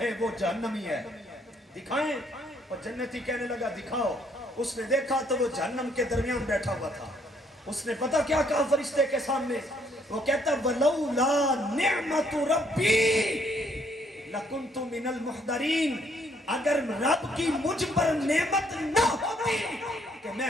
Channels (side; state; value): both; normal; correlation 0.68